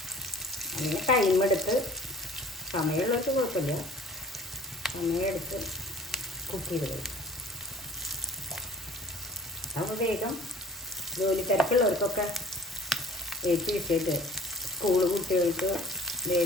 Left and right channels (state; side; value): normal; both; correlation 0.50